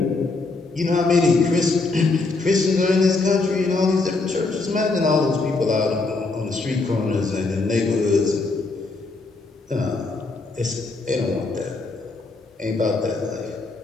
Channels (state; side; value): quieter; right; 3.6 dB